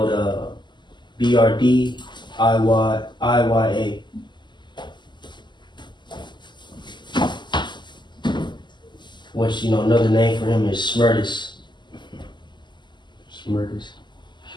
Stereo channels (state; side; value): late; right; 0.22 ms